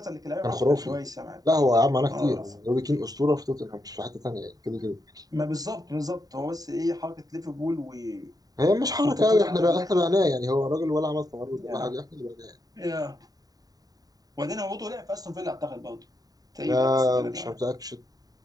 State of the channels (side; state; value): left; late; 0.18 ms